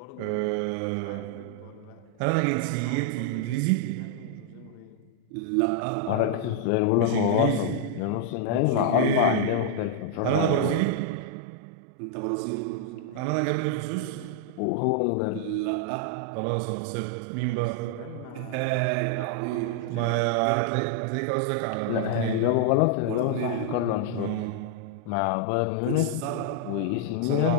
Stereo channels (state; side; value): different; both; correlation -0.01